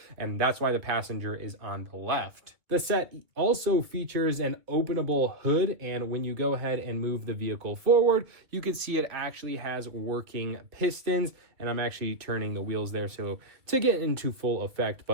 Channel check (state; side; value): late; left; 2.2 ms